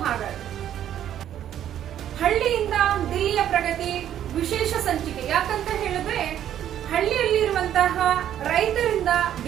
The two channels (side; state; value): left; quieter; 10.8 dB